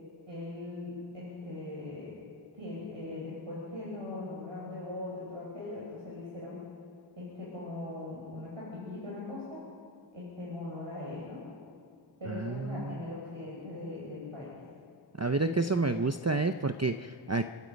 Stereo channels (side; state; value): both; normal; correlation 0.23